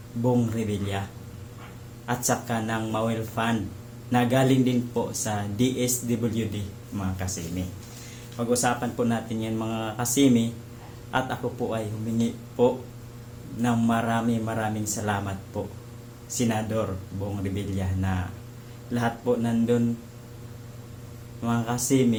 Bong Revilla at saka ng Mawel Fund na galing din po sa DSWD mga kasimi. Pag-usapan po natin yan mga kasimi at ako po ay humingi po ng maraming salamat po Senador Bong Revilla na lahat po nandun mga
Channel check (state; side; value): identical; both; correlation 1.00